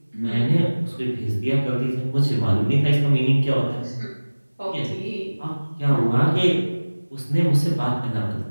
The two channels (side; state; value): both; inverted; correlation -1.00